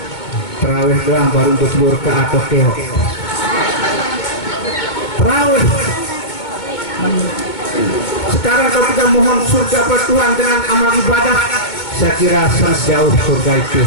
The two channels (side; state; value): right; late; 2.2 ms